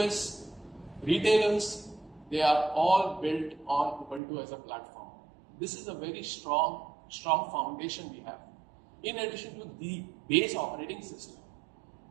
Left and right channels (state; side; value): drops out; left; at 4.2 s